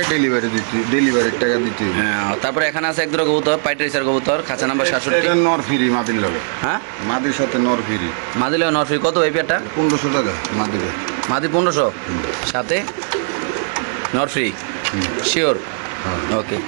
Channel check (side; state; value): left; silent; digital silence